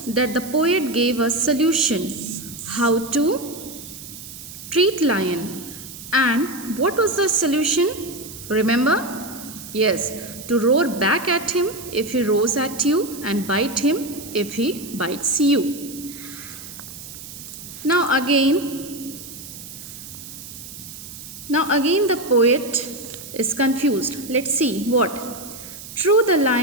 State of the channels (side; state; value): right; noise; hiss, 13 dB below the sound